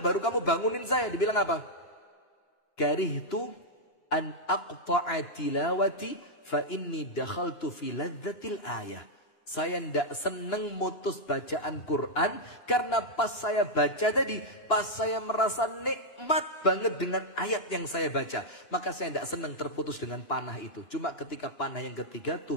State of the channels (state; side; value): late; right; 9.7 ms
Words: baru kamu bangunin saya? Dibilang apa? Karihtu an aqta'a tilawati fa inni dakhaltu fi ladzatil ayah. Saya tidak senang mutus bacaan Quran karena pas saya baca tadi, pas saya merasa nikmat banget dengan ayat yang saya baca, maka saya tidak senang terputus dengan panah itu. Cuma ketika panah yang ketiga,